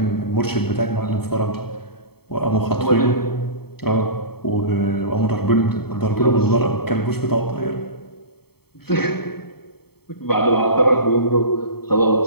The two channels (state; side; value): late; right; 0.96 ms